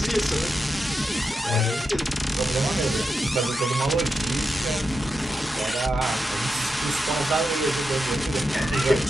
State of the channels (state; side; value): normal; both; correlation 0.87